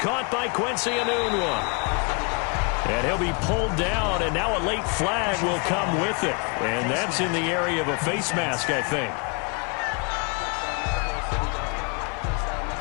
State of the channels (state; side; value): quieter; right; 32.7 dB